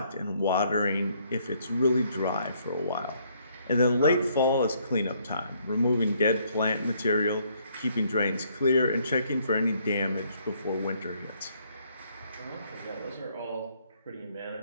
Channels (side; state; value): both; inverted; correlation -0.67